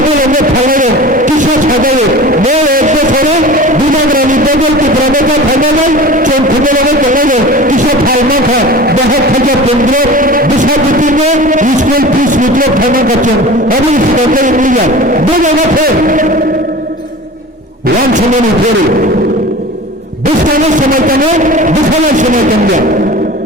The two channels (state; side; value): normal; both; correlation 0.37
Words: খাইলে কিসা ছাড়াইলে এক বছরে বিনাগ্রামী বদলকে প্রবেশা খাইলে চোখ খবলে কেটে কিসা ফাইমা খা 10,015 বিশাপতিনে স্কুল ফিস মিত্র ফাইমা করছেন আমি সরকারি মিলিয়া দু জায়গা ফের ওয়ান সময় ফেরে বিস্তারের সময় কেন দুখানের সময় কেন